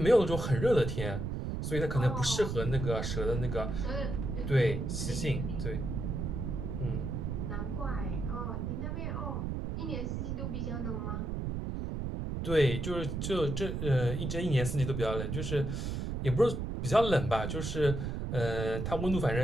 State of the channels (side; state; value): right; noise; rumble, 3 dB below the sound